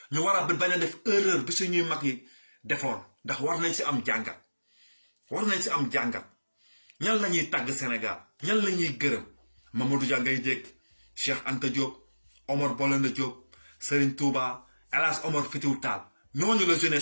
ñu war a bañ a def erreur bi suñuy mag yi defoon ndax war nañ si am jàngat ñan la ñuy tàgg Sénégal ñan la ñuy gërëm Mamadou Dia ngay dégg Cheikh Anta Diop Omar Blondin Diop Serigne Touba El Hadj Omar Foutiyou Tall ñooñu la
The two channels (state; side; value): inverted; both; correlation -1.00